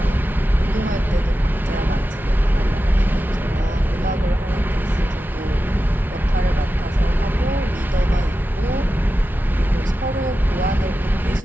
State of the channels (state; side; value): normal; both; correlation 0.92